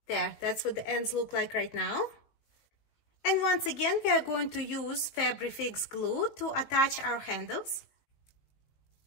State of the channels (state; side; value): late; right; 19 ms